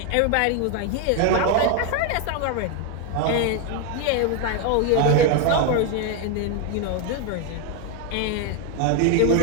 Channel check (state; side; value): different; both; correlation 0.01